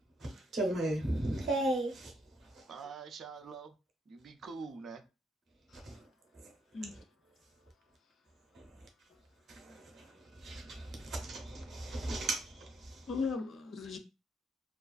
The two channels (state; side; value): normal; both; correlation 0.75